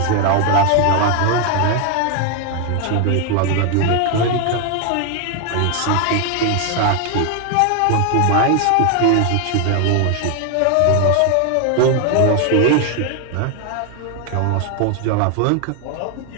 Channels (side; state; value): both; different; correlation 0.00